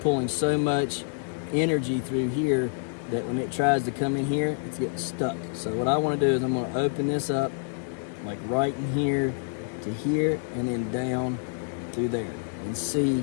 pulling so much energy through here that when it tries to come in here, it's getting stuck. So what I want to do is I'm going to open this up like right in here to here, and then down through there, and see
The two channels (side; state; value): right; silent; 60 dB below the other